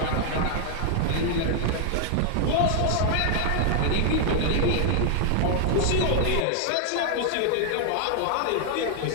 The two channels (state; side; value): different; both; correlation 0.00